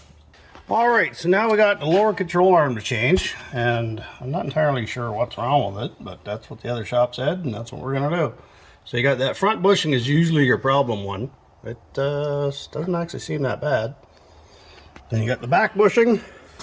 Alright, so now we got the lower control arm to change, and I'm not entirely sure what's wrong with it, but that's what the other shop said, and that's what we're going to do. So you got that front bushing is usually your problem one. It doesn't actually seem that bad. Then you got the back bushing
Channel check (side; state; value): both; identical; correlation 1.00